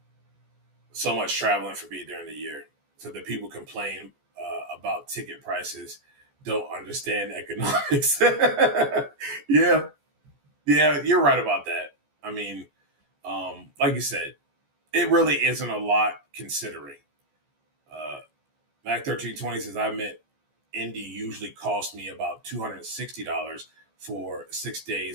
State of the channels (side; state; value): left; late; 14 ms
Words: So much traveling for me during the year, so that people complain about ticket prices don't understand economics. Yeah, you're right about that. I mean, like you said, it really isn't a lot considering. Mac 1320 says, I meant Indy usually cost me about $260 for 6